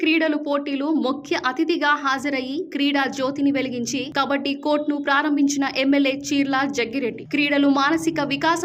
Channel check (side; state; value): both; identical; correlation 1.00